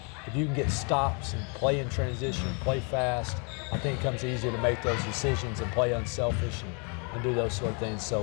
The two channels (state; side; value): quieter; right; 35.4 dB